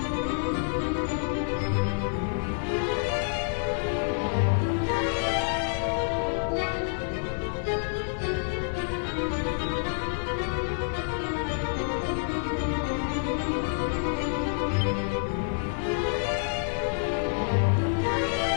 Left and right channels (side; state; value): right; silent; digital silence